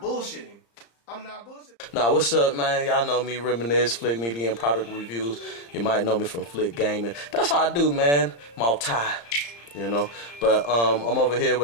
I'm not bullshitting. Nah, what's up, man? Y'all know me, RiMA'NiS, Flick Media and Product Reviews. You might know me from Flick Gaming. That's how I do, man. Multi. you know. But I'm over here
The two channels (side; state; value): right; late; 35 ms